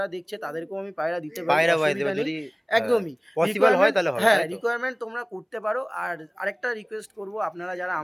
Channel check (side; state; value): both; identical; correlation 1.00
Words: দেখছে তাদেরকেও আমি পায়রা দিতে পারি, পায়রা বাইতে অসুবিধা এবার নেই। যদি হ্যাঁ, একদমই পসিবল হয় রিকোয়ারমেন্ট, তাহলে হবে, হ্যাঁ তাই তো? রিকোয়ারমেন্ট তোমরা করতে পারো। আর আরেকটা রিকোয়েস্ট করব, আপনারা যারা